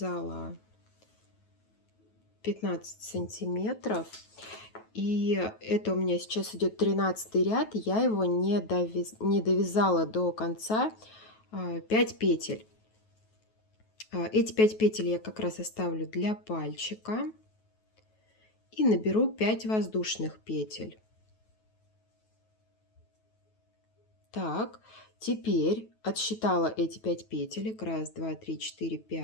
15 сантиметров. И это у меня сейчас идет 13 ряд, я его не довязала до конца 5 петель. Эти 5 петель я как раз оставлю для пальчика и наберу 5 воздушных петель. Так, теперь отсчитала эти 5 петелек, 1, 2, 3, 4,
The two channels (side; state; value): right; late; 9.2 ms